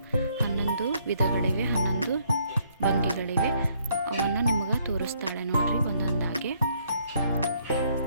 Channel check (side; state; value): both; inverted; correlation -0.68